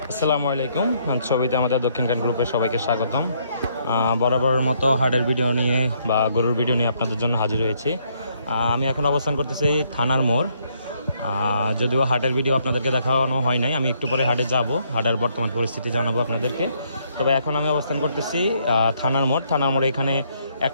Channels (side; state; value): both; inverted; correlation -0.70